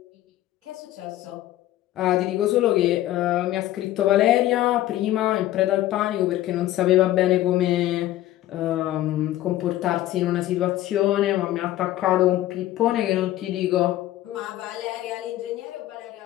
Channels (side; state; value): right; quieter; 14.6 dB